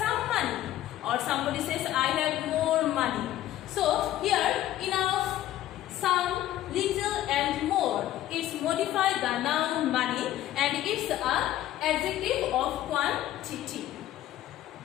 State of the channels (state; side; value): quieter; right; 13.5 dB